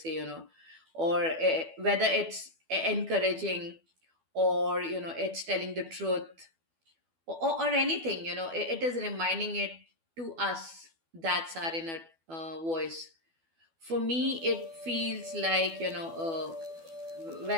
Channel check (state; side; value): late; left; 12 ms